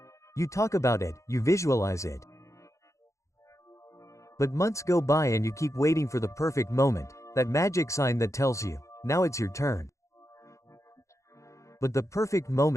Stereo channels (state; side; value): late; right; 0.15 ms